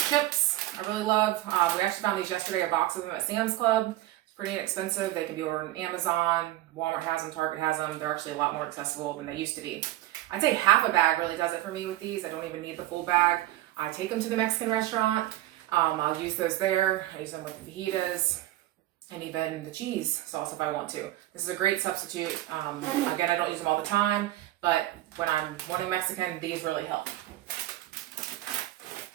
chips, I really love. We actually found these yesterday, a box of them at Sam's Club. It's pretty inexpensive. They can be ordered on Amazon. Walmart has them, Target has them. They're actually a lot more accessible than they used to be. I'd say half a bag really does it for me with these. I don't even need the full bag. I take them to the Mexican restaurant. I'll use those there. I use them with the fajitas and even the cheese sauce if I want to. This is a great substitute. Again, I don't use them all the time, but when I'm wanting Mexican, these really help.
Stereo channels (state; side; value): quieter; left; 15.7 dB